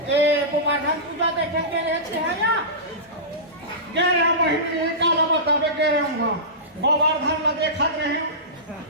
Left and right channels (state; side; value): normal; both; correlation -0.20